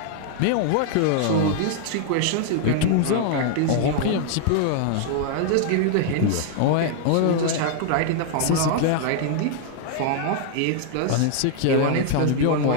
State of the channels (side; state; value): both; different; correlation 0.00